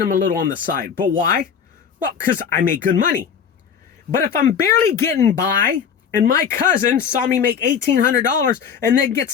him a little on the side. But why? Well, because I make good money. But if I'm barely getting by, and my cousin saw me make $1,800 and then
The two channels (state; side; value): quieter; right; 7.2 dB